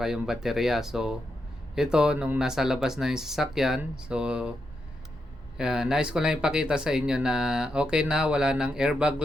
yung baterya. So, ito, nung nasa labas na yung sasakyan, so, Nais ko lang ipakita sa inyo na okay na, wala ng airbag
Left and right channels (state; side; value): normal; both; correlation 0.84